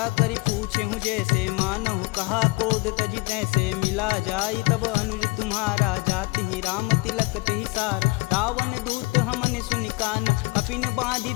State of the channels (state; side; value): quieter; right; 25.3 dB